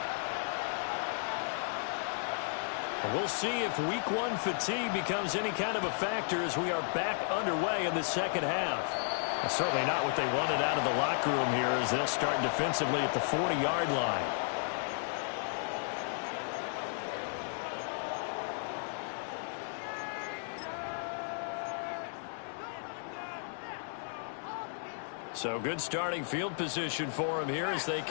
We'll see if week 1 fatigue becomes any kind of a factor as we are back underway in the second half. Well, certainly not what they wanted out of the locker room here as they'll start defensively at the 40-yard line. So good starting field position for them here as they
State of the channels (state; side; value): silent; right; digital silence